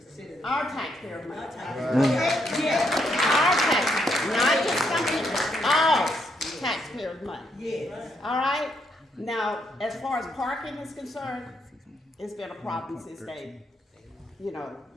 Our taxpayer money. Yeah, our taxpayer, not just something, all taxpayer money. Yes. All right? Now, as far as parking is concerned, it's been a problem since the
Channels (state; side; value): normal; both; correlation 0.76